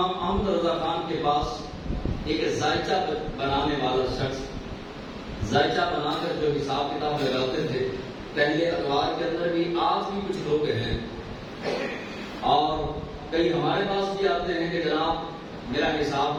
احمد رضا خان کے پاس ایک ذائچہ بنانے والا شخص ذائچہ بنا کر جو حساب کتاب لگاتے تھے، پہلے اخبار کے اندر بھی، آج بھی کچھ لوگ ہیں اور کئی ہمارے پاس بھی آتے ہیں کہ جناب میرا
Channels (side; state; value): both; identical; correlation 1.00